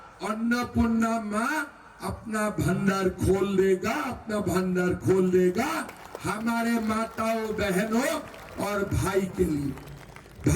अन्नपूर्णा माँ अपना भंडार खोल देगा, अपना भंडार खोल देगा हमारे माताओं बहनों और भाई के लिए।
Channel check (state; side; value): identical; both; correlation 1.00